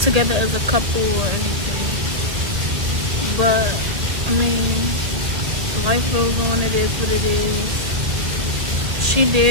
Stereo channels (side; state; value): left; late; 1.8 ms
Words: together as a couple or anything. But I mean, life goes on. It is what it is. She